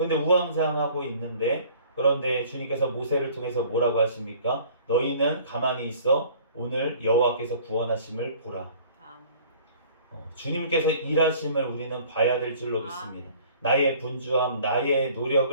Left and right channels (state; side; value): inverted; both; correlation -0.52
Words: 우왕좌왕하고 있는데 그런데 주님께서 모세를 통해서 뭐라고 하십니까? 너희는 가만히 있어 오늘 여호와께서 구원하심을 보라. 아멘. 주님께서 일하심을 우리는 봐야 될 줄로 믿습니다. 아멘. 나의 분주함, 나의